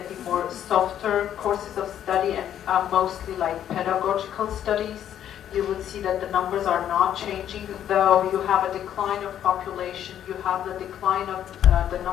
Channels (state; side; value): quieter; right; 10.3 dB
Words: the more softer courses of study and mostly like pedagogical studies. You would see that the numbers are not changing, though you have a decline of population, you have the decline of the